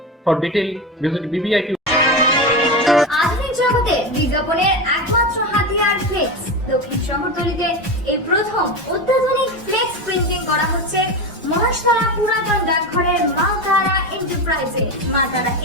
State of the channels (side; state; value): both; normal; correlation 0.20